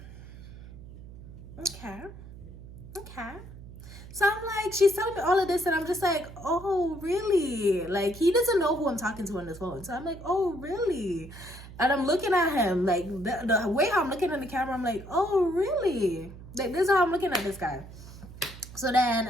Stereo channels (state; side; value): noise; right; hum, 16 dB below the sound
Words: Okay. So I'm like, she's telling me all of this, and I'm just like, oh, really? Like, he doesn't know who I'm talking to on this phone. So I'm like, oh, really? And I'm looking at him, like, the way how I'm looking at the camera, I'm like, oh, really? Like, this is how I'm looking at this guy. So